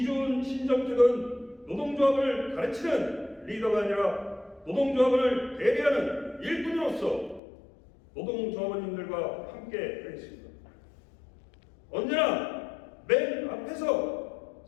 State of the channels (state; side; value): drops out; right; at 7.4 s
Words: 신정택은 노동조합을 가르치는 리더가 아니라 노동조합을 대리하는 일꾼으로서 노동조합원님들과 함께 하겠습니다. 언제나 맨 앞에서